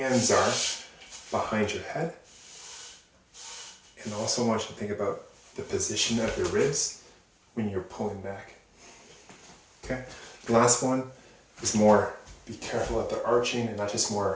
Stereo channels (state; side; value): identical; both; correlation 1.00